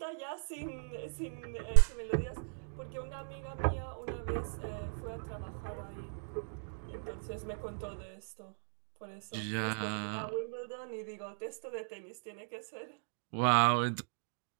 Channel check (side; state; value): left; silent; digital silence